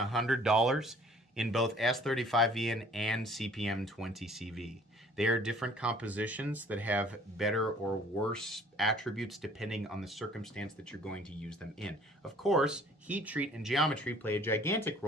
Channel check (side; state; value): both; normal; correlation 0.55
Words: in both S35VN and CPM 20CV. They are different compositions that have better or worse attributes depending on the circumstance that you're going to use them in. Of course, heat treat and geometry play a gigantic